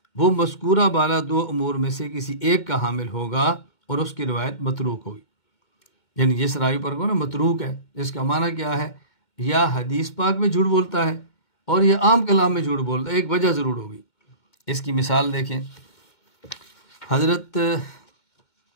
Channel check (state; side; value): late; right; 2.2 ms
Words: وہ مذکورہ بالا دو امور میں سے کسی ایک کا حامل ہوگا اور اس کی روایت متروک ہوگی۔ یعنی جس راوی پر کو نا متروک ہے، جس کا معنی کیا ہے، یا حدیث پاک میں جھوٹ بولتا ہے اور یہ عام کلام میں جھوٹ بولتا ہے، ایک وجہ ضرور ہوگی۔ اس کی مثال دیکھیں، حضرت